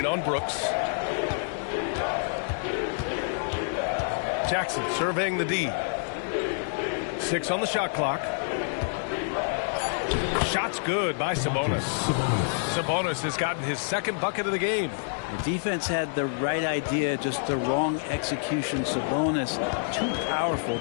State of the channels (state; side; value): silent; right; digital silence